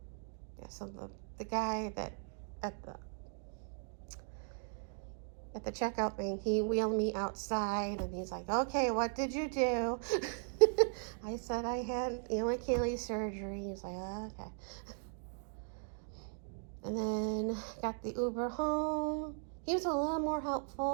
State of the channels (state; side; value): silent; left; 53 dB below the other